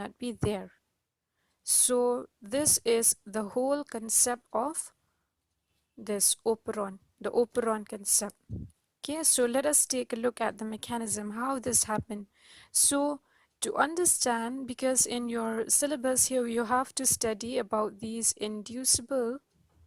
be there. So this is the whole concept of this operon, the operon concept. Okay, so let us take a look at the mechanism, how this happened. So to understand, because in your syllabus here you have to study about these inducible,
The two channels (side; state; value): both; identical; correlation 1.00